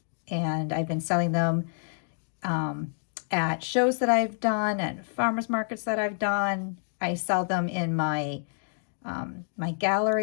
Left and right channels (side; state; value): right; silent; digital silence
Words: And I've been selling them at shows that I've done, at farmers markets that I've done. I sell them in my my